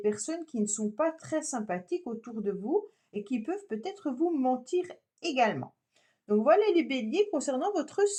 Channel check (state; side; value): identical; both; correlation 1.00